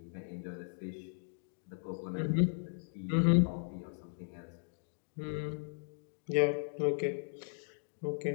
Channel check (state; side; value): silent; right; digital silence